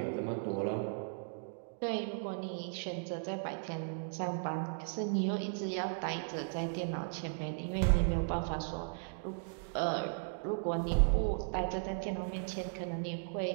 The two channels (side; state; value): left; silent; digital silence